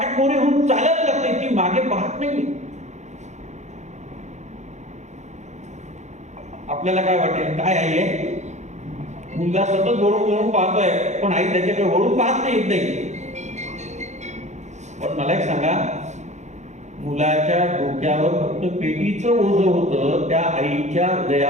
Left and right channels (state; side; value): late; left; 0.34 ms